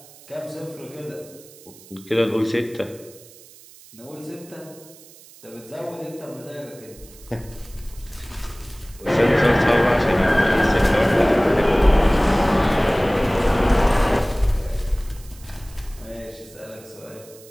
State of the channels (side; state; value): right; noise; hiss, 22 dB below the sound